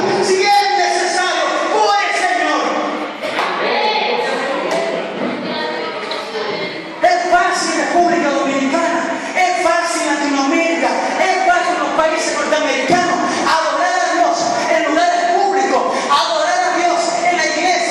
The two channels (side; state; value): both; identical; correlation 1.00